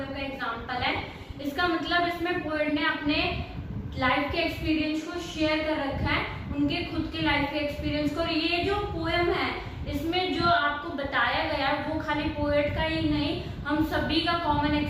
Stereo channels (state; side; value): identical; both; correlation 1.00